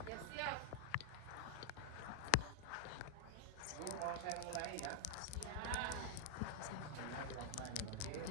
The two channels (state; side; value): different; both; correlation -0.01